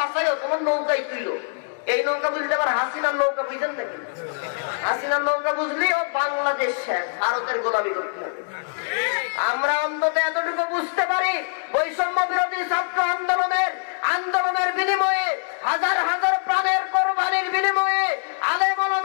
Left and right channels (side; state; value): right; silent; digital silence